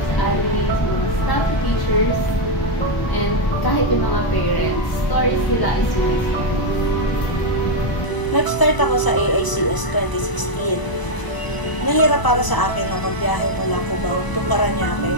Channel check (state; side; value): late; right; 1.0 ms